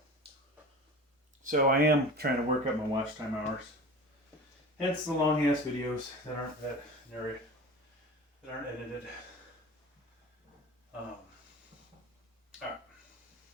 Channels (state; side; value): normal; both; correlation 0.35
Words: So I am trying to work up my watch time hours. Hence the long ass videos that aren't edited. Alright.